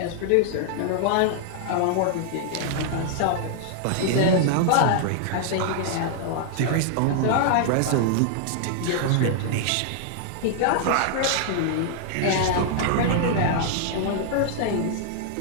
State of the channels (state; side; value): different; both; correlation -0.01